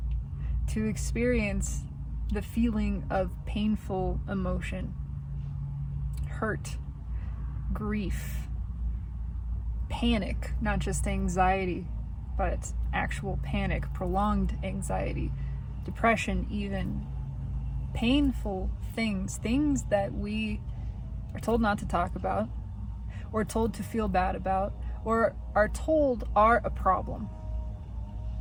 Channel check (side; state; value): both; identical; correlation 1.00